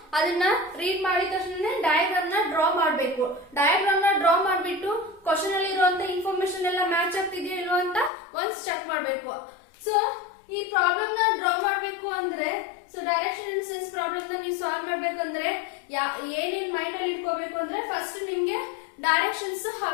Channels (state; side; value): drops out; right; at 8.1 s